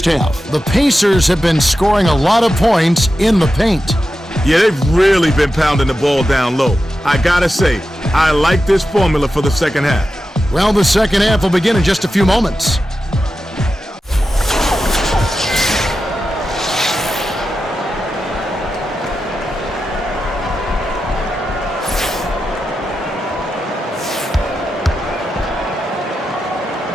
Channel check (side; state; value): both; normal; correlation 0.91